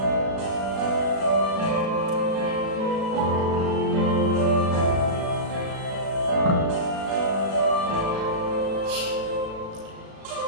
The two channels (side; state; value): left; late; 36 ms